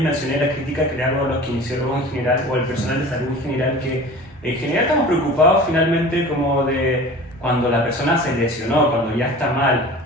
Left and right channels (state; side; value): normal; both; correlation 0.39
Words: mencioné la crítica que le hago a los kinesiólogos en general, o al personal de salud en general, que en general estamos preocupados finalmente como de cuando la persona se lesionó, cuando ya está